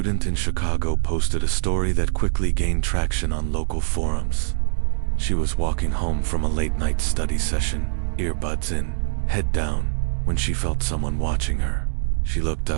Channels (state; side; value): silent; left; digital silence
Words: in Chicago posted a story that quickly gained traction on local forums. She was walking home from a late-night study session, earbuds in, head down, when she felt someone watching her. She looked